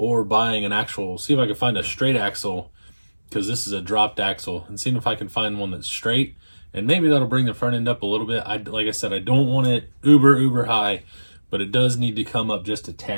buying an actual, see if I can find a straight axle, because this is a dropped axle, and seeing if I can find one that's straight, and maybe that'll bring the front end up a little bit. Like I said, I don't want it uber high, but it does need to come up just a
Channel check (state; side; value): inverted; both; correlation -1.00